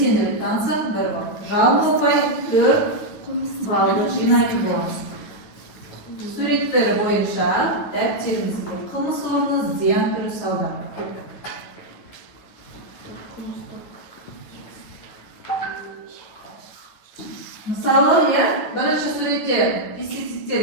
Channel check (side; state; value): right; late; 10 ms